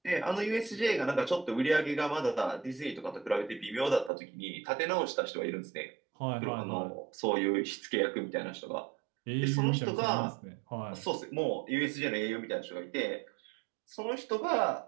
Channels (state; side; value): drops out; left; at 4.1 s